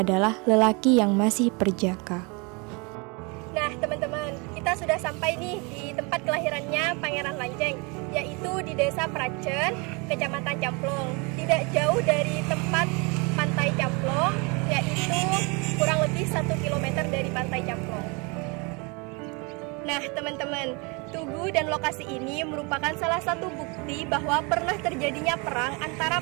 lelaki yang masih perjaka. Nah, teman-teman, kita sudah sampai nih di tempat kelahirannya Pangeran Lanceng, yaitu di Desa Pracen, Kecamatan Camplong. Tidak jauh dari tempat Pantai Camplong, yaitu kurang lebih 1 km dari Pantai Camplong. Nah, teman-teman, tugu dan lokasi ini merupakan salah satu bukti bahwa pernah terjadinya perang antara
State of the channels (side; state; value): left; quieter; 30.2 dB